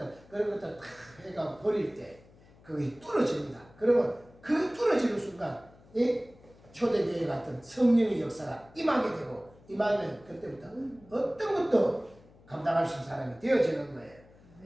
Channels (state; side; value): noise; left; hum, 26 dB below the sound